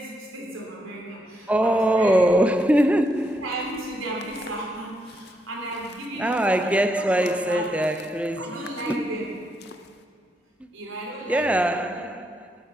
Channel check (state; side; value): normal; both; correlation 0.79